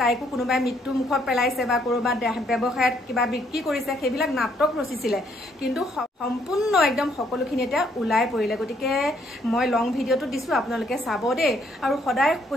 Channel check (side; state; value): both; normal; correlation 0.69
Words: তাইকো কোনোবাই মৃত্যু মুখত পেলাইছে বা ক'ৰবাত ব্যৱসায়ত কিবা বিক্ৰী কৰিছে সেইবিলাক নাটক ৰচিছিলে কিন্তু সম্পূৰ্ণ একদম সকলোখিনি এতিয়া ওলাই পৰিলে গতিকে মই লং ভিডিঅ'টো দিছোঁ আপোনালোকে চাব দেই আৰু সদায়